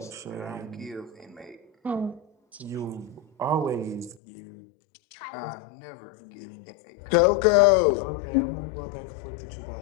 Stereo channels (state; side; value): drops out; right; at 4.2 s